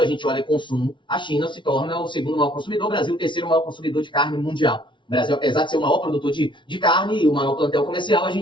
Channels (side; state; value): right; late; 0.24 ms